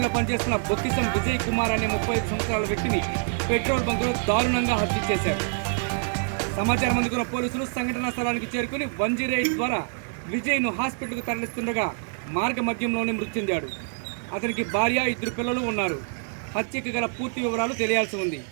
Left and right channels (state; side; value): silent; left; 61 dB below the other